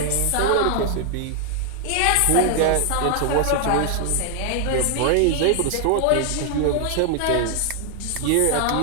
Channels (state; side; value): different; both; correlation 0.00